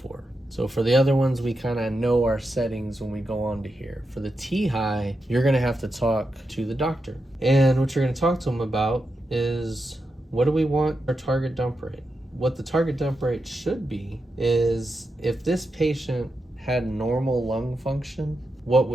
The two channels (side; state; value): both; normal; correlation 0.87